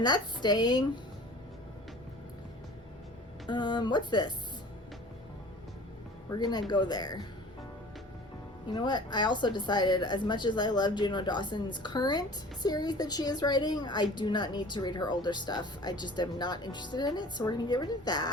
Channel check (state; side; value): normal; both; correlation 0.44